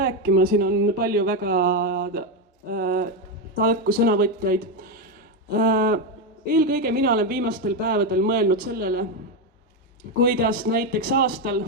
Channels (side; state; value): both; normal; correlation 0.08